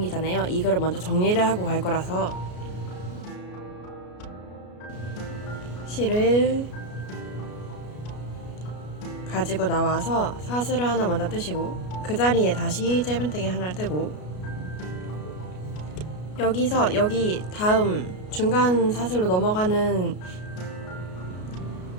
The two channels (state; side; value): late; right; 33 ms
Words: 이거를 먼저 정리를 하고 갈 거라서 실을 가지고 나와서 사슬을 하나 먼저 뜨시고 그 자리에 다시 짧은뜨기 하나를 뜨고 여기서 여기 다음 중간 사슬로 넘어가는